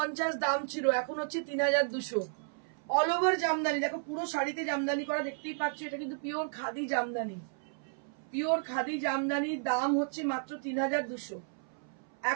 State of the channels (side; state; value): left; silent; 56 dB below the other